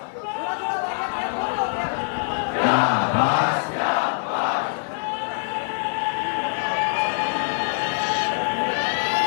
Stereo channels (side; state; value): right; silent; 59 dB below the other